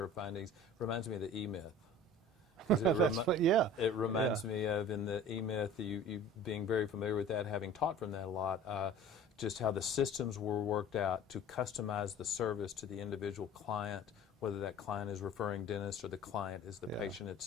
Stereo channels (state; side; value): normal; both; correlation 0.43